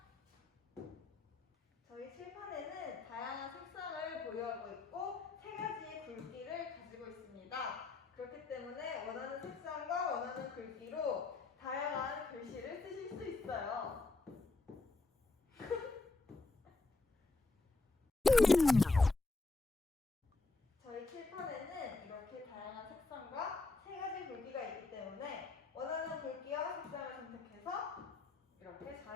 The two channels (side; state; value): right; quieter; 3.6 dB